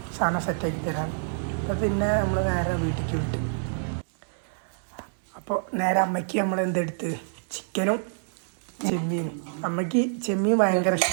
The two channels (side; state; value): left; silent; digital silence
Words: സാധനം സെറ്റാക്കി തരാം. അപ്പോൾ പിന്നെ നമ്മൾ നേരെ വീട്ടിലേക്ക് വിട്ടു. അപ്പോൾ നേരെ അമ്മയ്ക്ക് നമ്മൾ എന്തെടുത്ത് ചിക്കനും ചെമ്മീനും. അമ്മയ്ക്ക് ചെമ്മീൻ ഭയങ്കര